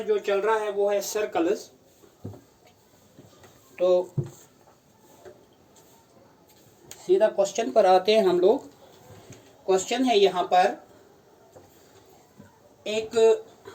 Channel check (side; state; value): both; identical; correlation 1.00